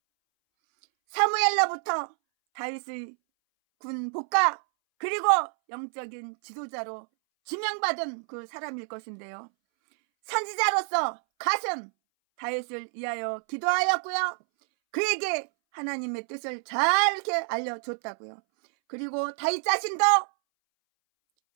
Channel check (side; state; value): left; silent; 60 dB below the other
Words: 사무엘로부터 다윗의 군 복가 그리고 영적인 지도자로 지명받은 그 사람일 것인데요. 선지자로서 갓은 다윗을 위하여 기도하였고요. 그에게 하나님의 뜻을 잘 이렇게 알려줬다고요. 그리고 다윗 자신도